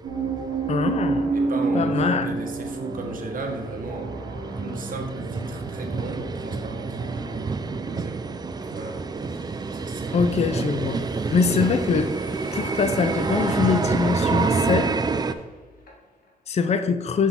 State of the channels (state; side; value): normal; both; correlation 0.59